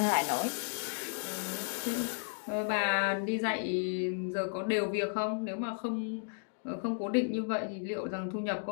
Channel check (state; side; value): silent; right; digital silence